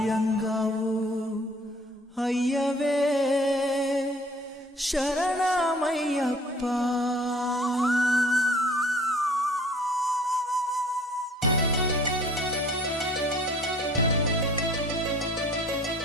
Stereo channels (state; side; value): normal; both; correlation 0.53